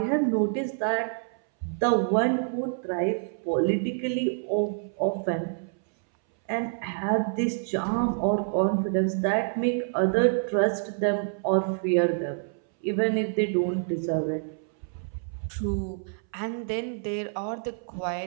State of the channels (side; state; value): left; silent; 60 dB below the other